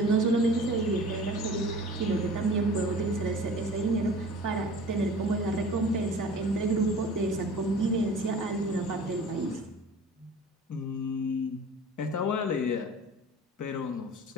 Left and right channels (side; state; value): both; normal; correlation 0.42